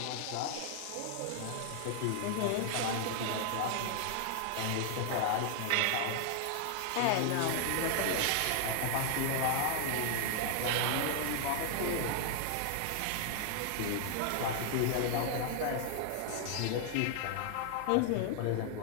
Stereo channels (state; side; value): different; both; correlation 0.00